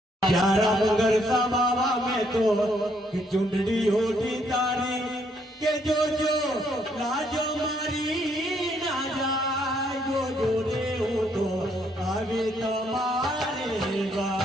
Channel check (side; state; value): both; normal; correlation 0.70